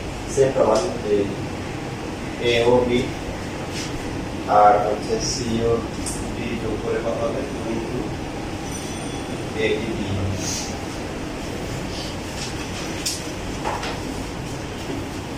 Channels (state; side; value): identical; both; correlation 1.00